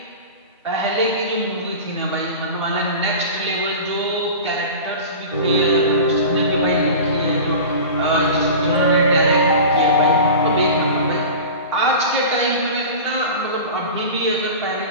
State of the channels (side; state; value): both; inverted; correlation -0.33